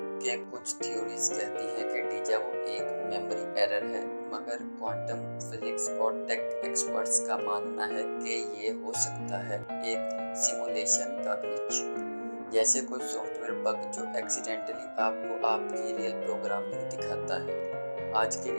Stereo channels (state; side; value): inverted; both; correlation -1.00